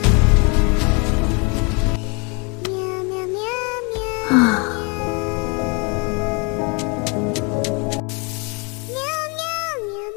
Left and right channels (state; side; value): quieter; right; 32.0 dB